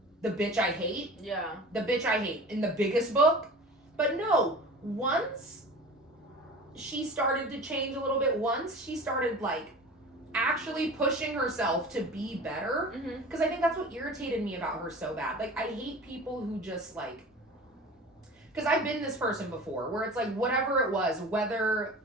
the bitch I hate? Yeah. The bitch I hate in the biggest book? But no, once she started to change a little bit, once she started, like, actually pushing herself to be better, because I think that's what irritated me about her so bad. Like, I hate people who just, like, because I've been this person before, where it's like, whatever it was, whether,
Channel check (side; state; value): both; normal; correlation 0.38